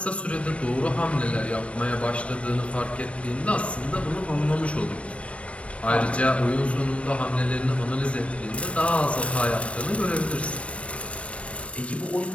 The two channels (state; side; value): late; right; 0.062 ms